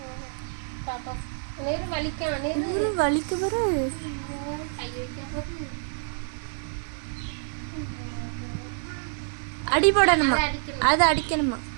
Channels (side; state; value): left; silent; digital silence